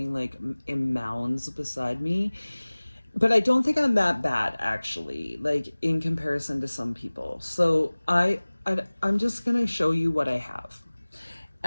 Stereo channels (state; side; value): inverted; both; correlation -1.00